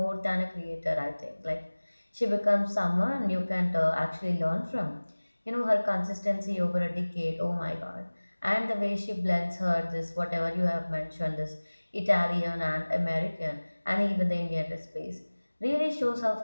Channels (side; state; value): both; inverted; correlation -1.00